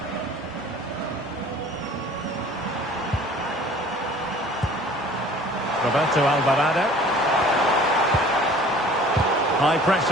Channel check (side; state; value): both; normal; correlation 0.49